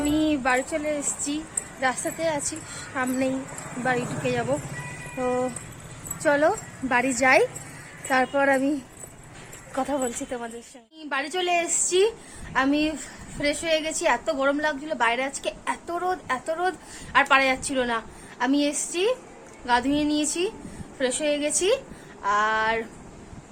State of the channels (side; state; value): both; identical; correlation 1.00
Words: বাড়ি চলে এসেছি, রাস্তাতে আছি, সামনেই বাড়ি ঢুকে যাব। তো চলো বাড়ি যাই, তারপর আমি কথা বলছি তোমাদের সঙ্গে। বাড়ি চলে এসেছি, আমি ফ্রেশ হয়ে গেছি। এত গরম লাগছিল বাইরে আজকে, এত রোদ আর পারা যাচ্ছিল না। আমি এসেছি, গা ধুয়ে নিয়েছি, ফ্রেশ হয়ে গেছি। আর